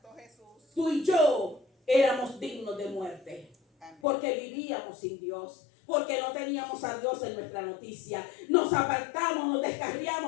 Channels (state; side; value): drops out; right; at 4.0 s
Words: Jesús. Tú y yo éramos dignos de muerte, porque vivíamos sin Dios, porque no teníamos a Dios en nuestra noticia. Nos apartamos, nos